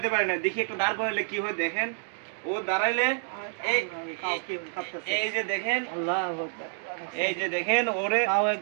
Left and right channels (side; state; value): left; silent; digital silence